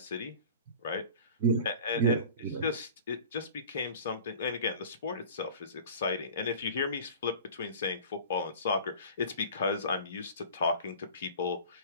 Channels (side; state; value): both; inverted; correlation -0.39